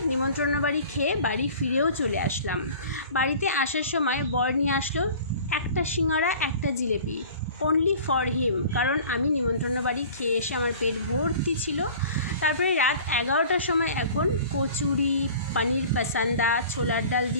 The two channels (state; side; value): inverted; both; correlation -0.44